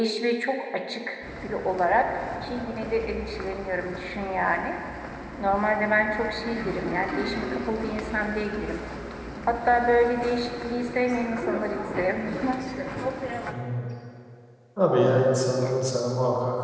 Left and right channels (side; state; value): both; identical; correlation 1.00